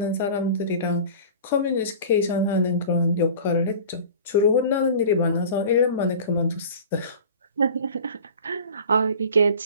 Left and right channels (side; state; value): both; inverted; correlation -0.40